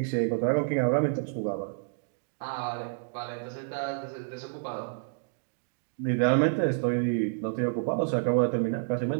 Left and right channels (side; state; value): left; silent; digital silence